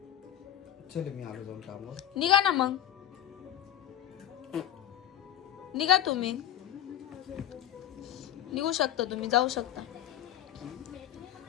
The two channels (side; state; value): right; quieter; 11.4 dB